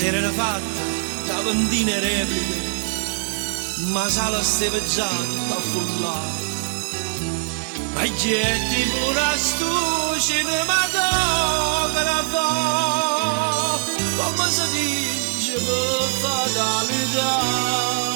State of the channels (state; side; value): silent; left; digital silence